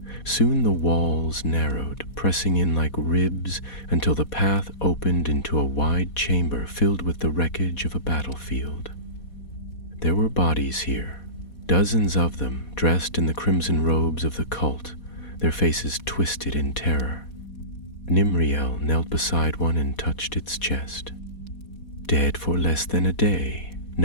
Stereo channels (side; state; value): right; late; 4.2 ms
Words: Soon the walls narrowed, pressing in like ribs until the path opened into a wide chamber filled with the wreckage of a battlefield. There were bodies here, dozens of them dressed in the crimson robes of the cult, their faces twisted in terror. Nimriel knelt beside one and touched its chest. "Dead for less than a day,